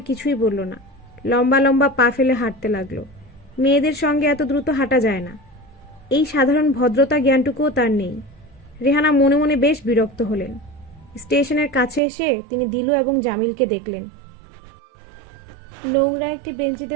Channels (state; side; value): drops out; left; at 12.0 s